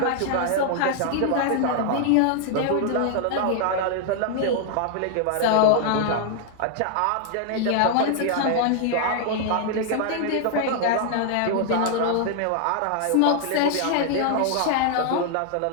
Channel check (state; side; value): different; both; correlation 0.00